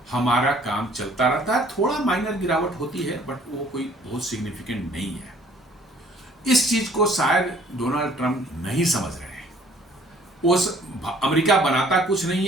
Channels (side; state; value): both; normal; correlation 0.57